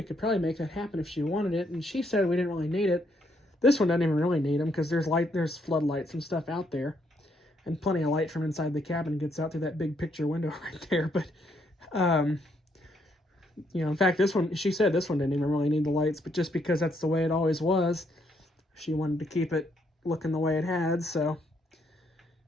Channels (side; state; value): both; normal; correlation 0.73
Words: could probably make that happen if she wanted it, and she said we didn't really need it. This one doesn't even really need them because there's floodlights and stuff out there, and plenty of light from inside the cabin gets out through that big picture window right there. But you know, in fact, this one, she said this one didn't even really need the lights, but just because that's the way it always was, she wanted to keep it looking the way it had, so,